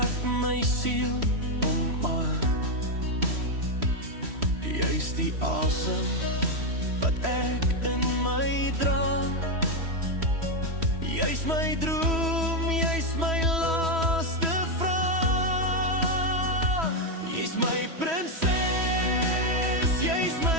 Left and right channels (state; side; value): late; left; 3.1 ms